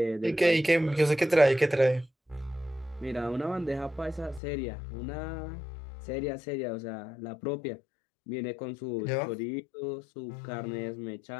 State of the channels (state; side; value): drops out; right; at 4.4 s